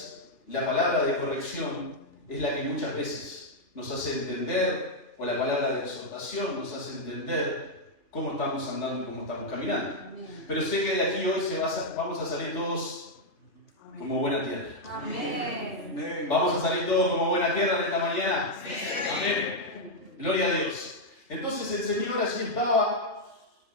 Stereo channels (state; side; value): late; right; 2.7 ms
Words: la palabra de corrección es la que muchas veces nos hace entender, o la palabra de exhortación nos hace entender cómo estamos andando y cómo estamos caminando. Pero sé que de aquí hoy vamos a salir todos como buena tierra. Amén. ¿Vamos a salir todos como buena tierra en esta mañana? Amén. Gloria a Dios. Entonces el Señor allí estaba,